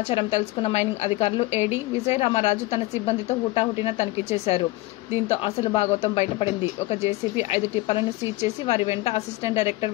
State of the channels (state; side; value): quieter; right; 19.4 dB